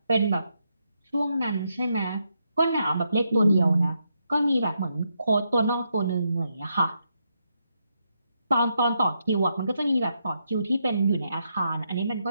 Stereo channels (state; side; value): inverted; both; correlation -0.81